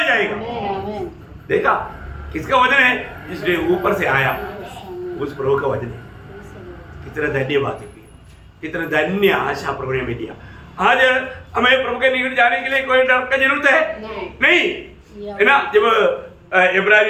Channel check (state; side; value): identical; both; correlation 1.00